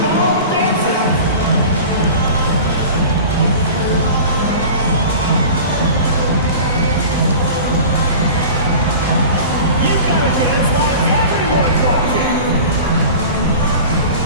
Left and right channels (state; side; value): inverted; both; correlation -0.37